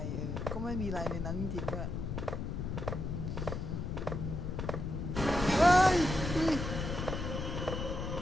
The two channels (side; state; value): left; noise; rumble, 3 dB below the sound